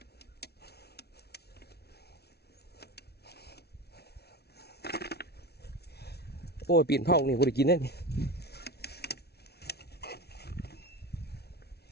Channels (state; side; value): late; right; 0.47 ms